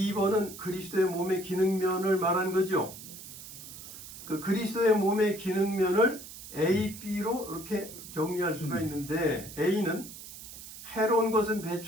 그리스도의 몸의 기능면을 말한 거죠. 그 그리스도의 몸의 기능면을 A, B로 이렇게 정리할 수가 있는데 A는 해로운 것은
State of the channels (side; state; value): right; noise; hiss, 14 dB below the sound